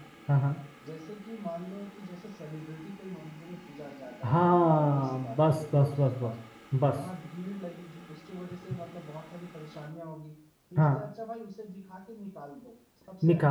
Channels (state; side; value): identical; both; correlation 1.00